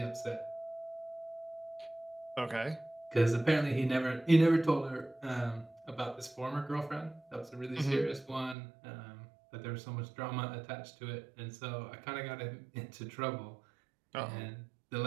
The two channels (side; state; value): left; drops out; at 8.6 s